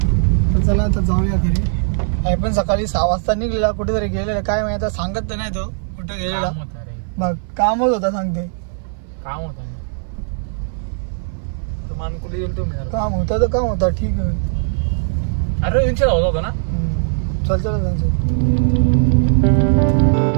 तर चला आता जाऊया घरी. आई पण सकाळी 6 वाजता निघलेला कुठेतरी गेलेला काय माहिती आता सांगत तर नाही तो कुठे गेलेला. मग कामच होता सांगते. काम होता काम होता तर काम होता ठीक आहे. अरे होता ना. चल चल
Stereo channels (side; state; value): left; silent; 59 dB below the other